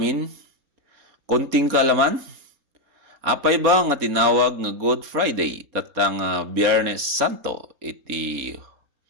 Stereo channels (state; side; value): late; left; 4.3 ms